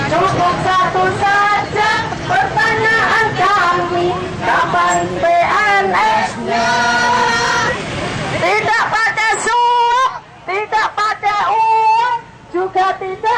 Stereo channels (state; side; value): identical; both; correlation 1.00